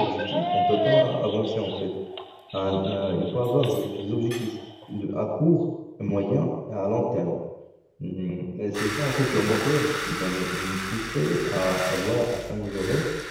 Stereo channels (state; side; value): identical; both; correlation 1.00